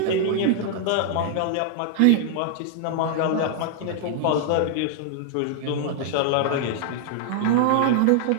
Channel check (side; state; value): both; different; correlation -0.01